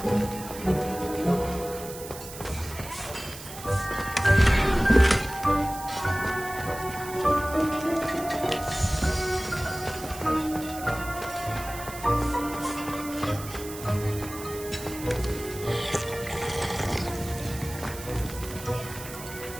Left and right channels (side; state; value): right; noise; hiss, 13 dB below the sound